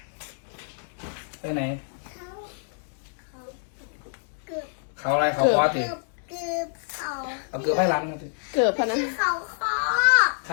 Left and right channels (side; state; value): right; silent; 60 dB below the other